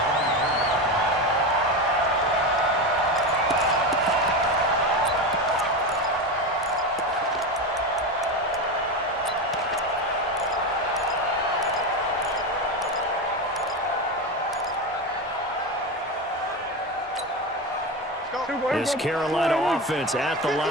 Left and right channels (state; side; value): normal; both; correlation 0.19